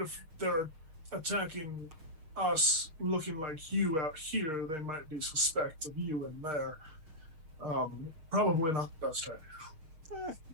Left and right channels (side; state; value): left; late; 6.5 ms